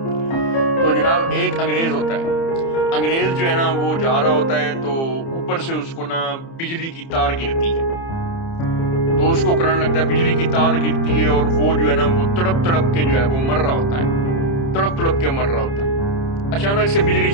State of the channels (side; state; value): right; late; 30 ms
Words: तो जनाब, एक अंग्रेज होता है। अंग्रेज जो है ना, वो जा रहा होता है तो ऊपर से उसको ना बिजली की तार गिरती है। तो उसको करंट लगता है, बिजली की तार गिरती है और वो जो है ना, वो तड़प तड़प के जो है वो मर रहा होता है, तड़प तड़प के मर रहा होता है। अचानक से बिजली